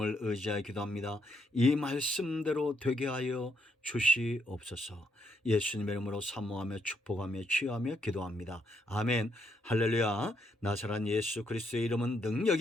의지하여 기도합니다. 이 말씀대로 되게 하여 주시옵소서. 예수님의 이름으로 사모하며 축복하며 취하며 기도합니다. 아멘. 할렐루야. 나사렛 예수 그리스도의 이름은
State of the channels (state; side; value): normal; both; correlation 0.75